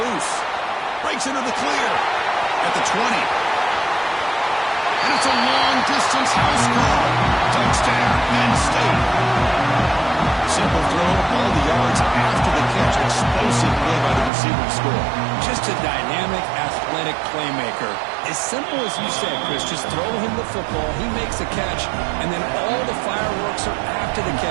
Breaks into the clear at the 20. And it's a long-distance house call. Touchdown, Penn State. Simple throw, all the yards after the catch. Explosive play by the receiver to score. Just a dynamic, athletic playmaker. As simple as you said, Chris, just throw him the football, he makes a catch, and then all the fireworks are after after the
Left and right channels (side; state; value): left; drops out; at 14.3 s